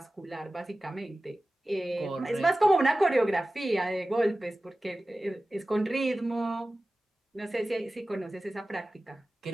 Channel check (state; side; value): normal; both; correlation 0.96